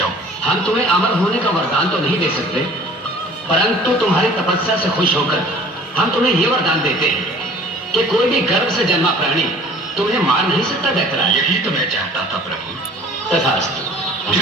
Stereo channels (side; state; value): both; normal; correlation 0.49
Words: हम तुम्हें अमर होने का वरदान तो नहीं दे सकते, परंतु तुम्हारी तपस्या से खुश होकर हम तुम्हें यह वरदान देते हैं कि कोई भी गर्भ से जन्मा प्राणी तुम्हें मार नहीं सकता दैत्यराज। यही तो मैं चाहता था प्रभु। तथास्तु।